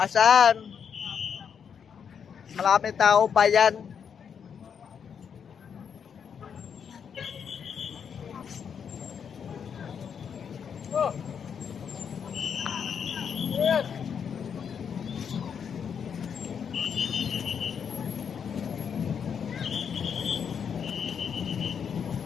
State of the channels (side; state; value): right; quieter; 7.3 dB